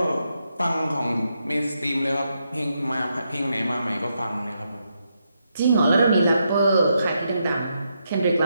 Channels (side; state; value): both; inverted; correlation -0.81